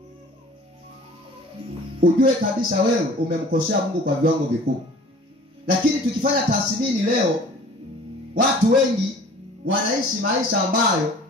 ujue kabisa wewe umemkosea Mungu kwa viwango vikubwa. Lakini tukifanya tathmini leo, watu wengi wanaishi maisha ambayo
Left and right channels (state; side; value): normal; both; correlation 0.47